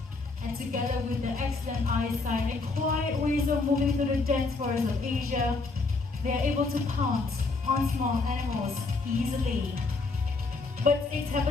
And together with their excellent eyesight and quiet ways of moving through the dense forests of Asia, they are able to pounce on small animals easily. Bird steaks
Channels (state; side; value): quieter; right; 3.8 dB